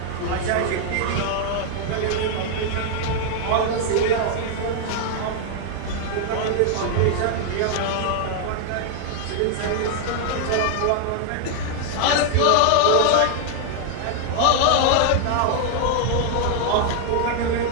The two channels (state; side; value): different; both; correlation 0.00